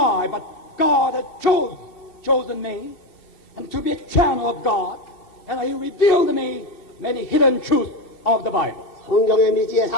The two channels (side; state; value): right; late; 2.8 ms